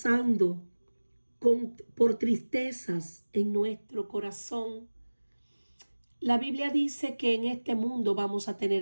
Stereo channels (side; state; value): both; inverted; correlation -1.00